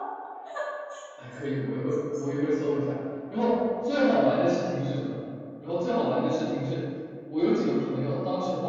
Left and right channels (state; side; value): identical; both; correlation 1.00